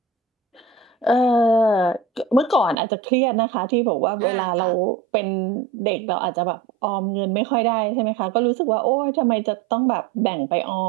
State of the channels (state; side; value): drops out; left; at 2.8 s